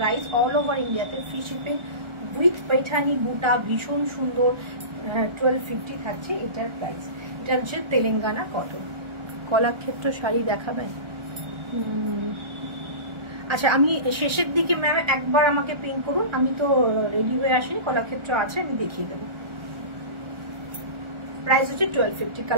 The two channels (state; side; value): late; left; 1.4 ms